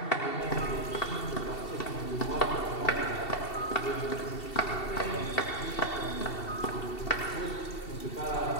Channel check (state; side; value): late; right; 2.7 ms